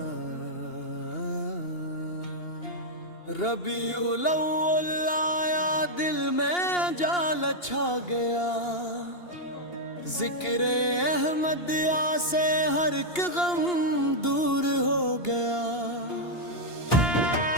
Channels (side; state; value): right; late; 2.8 ms